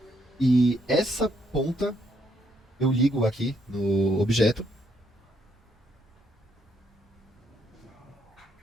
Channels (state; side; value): normal; both; correlation 0.73